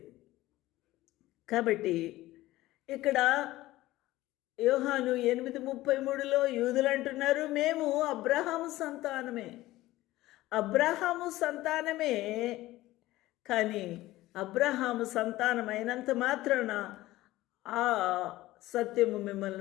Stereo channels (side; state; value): right; quieter; 17.0 dB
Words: కాబట్టి ఇక్కడ యోహాను 8:33లో యూదులు అంటున్నారు, మేము అబ్రహాము సంతానమే, అబ్రహాము సంతానమే. కానీ అబ్రహాము సంతానమైనంత మాత్రాన ఆ సత్యము